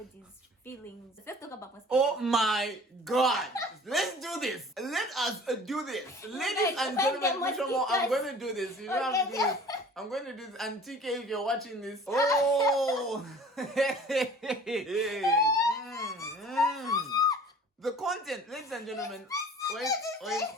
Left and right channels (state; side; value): normal; both; correlation 0.46